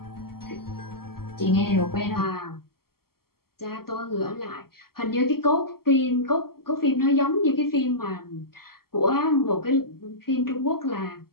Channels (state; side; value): late; right; 0.94 ms